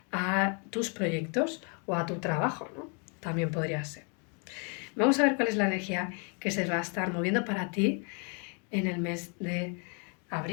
a tus proyectos o a tu trabajo, ¿no? También podría ser. Vamos a ver cuál es la energía que se va a estar moviendo para ti en el mes de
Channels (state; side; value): quieter; right; 37.4 dB